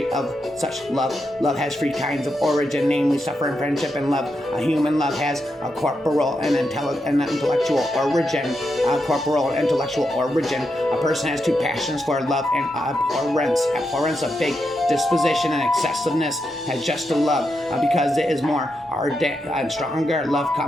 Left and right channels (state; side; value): normal; both; correlation 0.85